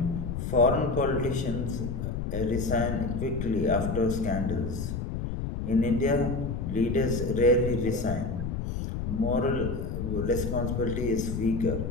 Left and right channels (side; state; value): left; noise; rumble, 3 dB below the sound